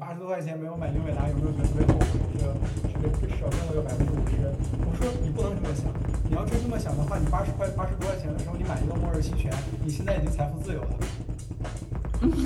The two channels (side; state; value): both; identical; correlation 1.00